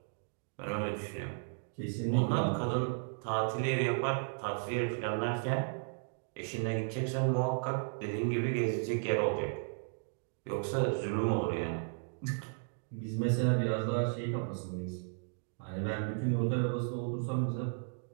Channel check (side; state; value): left; silent; digital silence